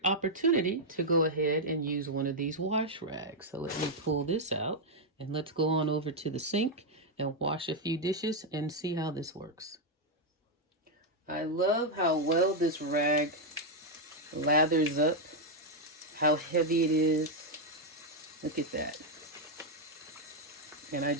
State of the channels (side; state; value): both; normal; correlation 0.00